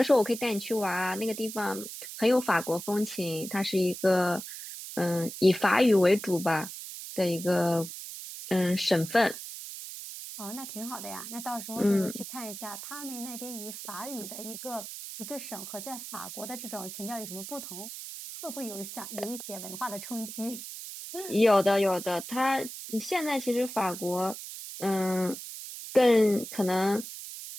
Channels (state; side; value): noise; right; hiss, 10 dB below the sound